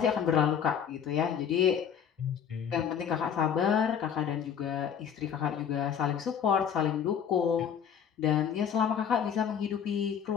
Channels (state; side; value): quieter; right; 8.1 dB